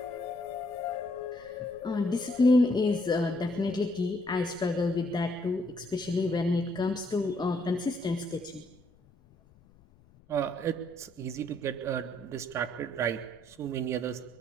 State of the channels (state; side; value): noise; left; rumble, 28 dB below the sound